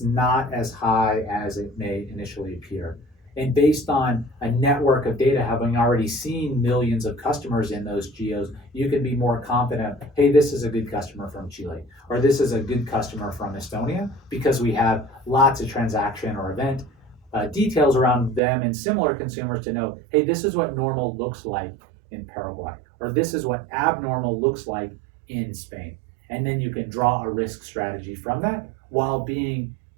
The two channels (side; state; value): left; drops out; at 18.4 s